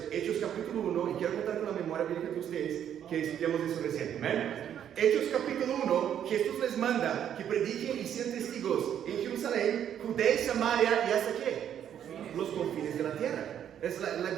Hechos capítulo 1, y quiero contar con la memoria bíblica de ustedes que estudiamos eso recién. ¿Amén? Hechos capítulo 1, Jesús les manda que prediquen y sean testigos en Jerusalén, Judea y Samaria, y hasta qué? Los confines de la tierra. Es la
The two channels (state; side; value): quieter; left; 9.6 dB